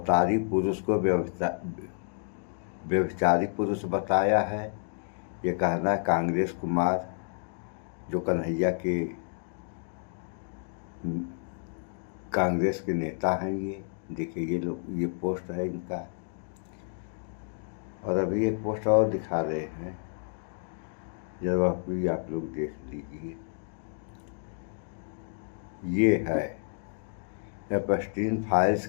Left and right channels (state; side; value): silent; right; 58 dB below the other